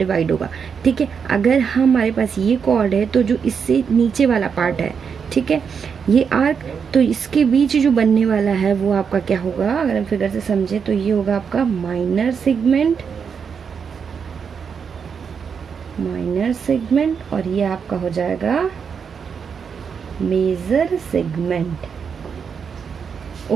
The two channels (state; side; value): quieter; left; 6.5 dB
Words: होगा। ठीक है, अगर हमारे पास ये कॉर्ड है तो जो इससे नीचे वाला पार्ट है, ठीक है, ये आर्क, तो इसके बीच जो बनने वाला है वो आपका क्या होगा, अगर हम फिगर से समझे तो ये होगा आपका माइनर सेगमेंट, माइनर सेगमेंट, और ये आपका हो जाएगा मेजर सेगमेंट।